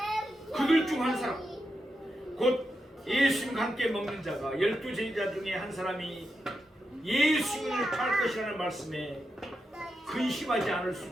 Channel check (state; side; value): normal; both; correlation 0.87